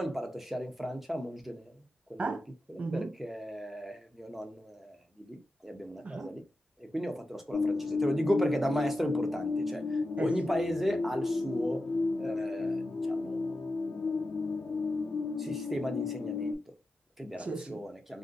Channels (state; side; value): normal; both; correlation 0.91